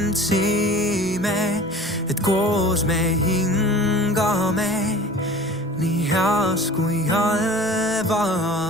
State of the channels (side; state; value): both; normal; correlation 0.42